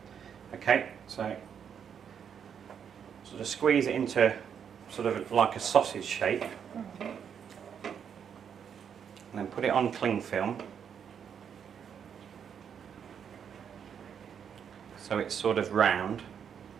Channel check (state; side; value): quieter; left; 7.8 dB